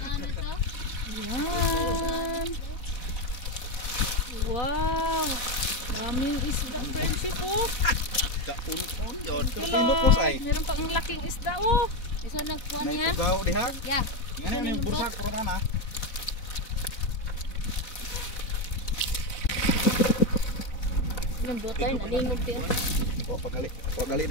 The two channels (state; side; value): late; right; 4.0 ms